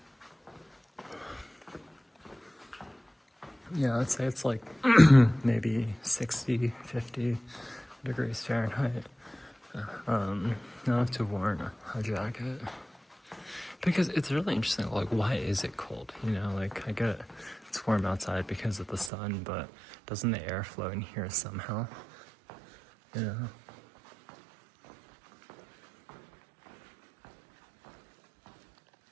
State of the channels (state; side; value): drops out; left; at 19.1 s